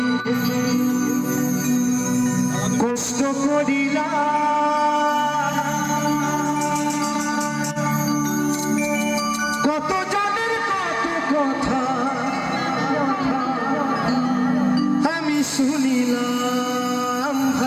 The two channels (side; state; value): both; identical; correlation 1.00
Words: কষ্ট করিলা কত জনের কত কথা আমি শুনিলাম